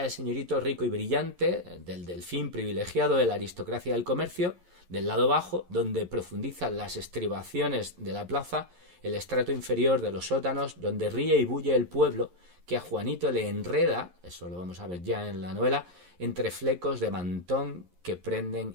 del señorito rico y brillante, del delfín privilegiado de la aristocracia del comercio. Del lado bajo, donde profundizan las estribaciones de la plaza, el estrato inferior de los sótanos, donde ríe y bulle el pueblo, que a Juanito le enreda, eso lo vamos a ver ya en la novela, entre flecos de mantón que prenden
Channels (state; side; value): late; left; 11 ms